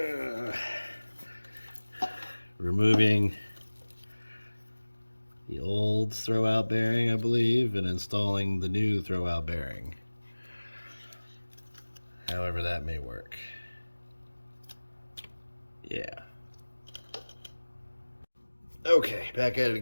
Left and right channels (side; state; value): both; inverted; correlation -1.00